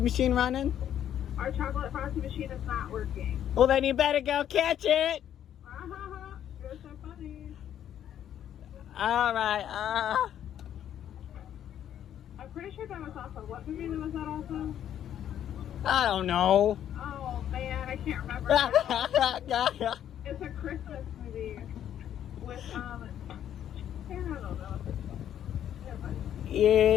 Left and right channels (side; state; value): right; quieter; 10.4 dB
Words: machine running? Our chocolate frosty machine is not working. Well, then you better go catch it. You're so funny. Alright, I'm pretty sure that was also, what movie was that also? I don't know. Oh, man, I can't remember. Now. It's a Christmas movie with, I don't know.